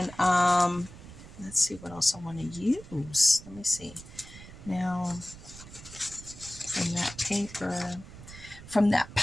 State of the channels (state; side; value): noise; right; rumble, 16 dB below the sound